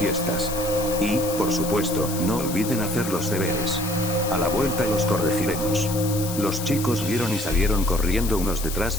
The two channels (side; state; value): left; noise; hiss, 8 dB below the sound